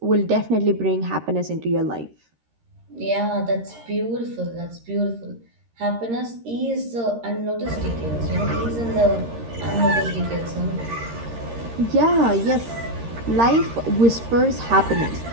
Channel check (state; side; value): late; left; 13 ms